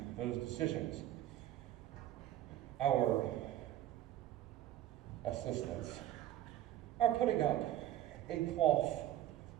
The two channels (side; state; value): left; quieter; 13.0 dB